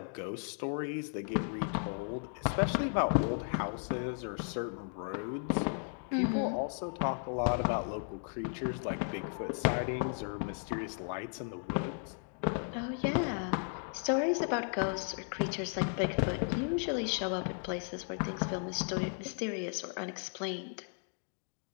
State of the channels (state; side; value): silent; right; 54 dB below the other